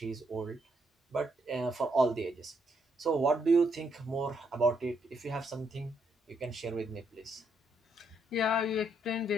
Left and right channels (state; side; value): normal; both; correlation 0.75